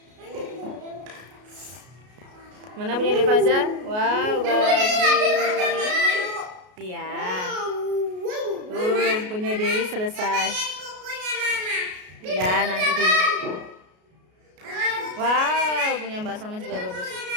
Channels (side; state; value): left; late; 33 ms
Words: Mana punya Devaza? Wow, bagus. Iya. Punya Dewi selesai. Ya, nanti dulu. Wow, punya Mbak Salma juga bagus.